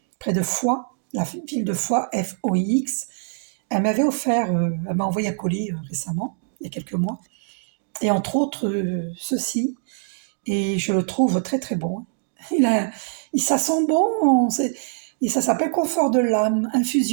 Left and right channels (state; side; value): silent; left; digital silence